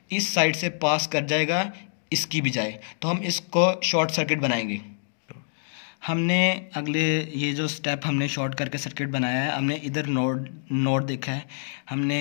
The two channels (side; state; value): right; silent; digital silence